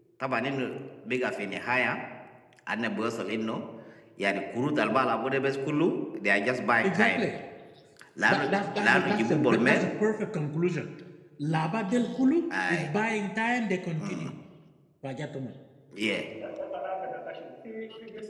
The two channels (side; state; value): both; identical; correlation 1.00